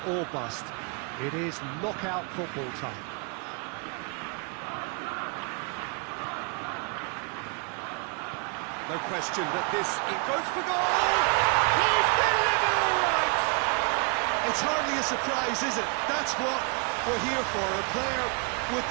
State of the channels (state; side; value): quieter; left; 35.2 dB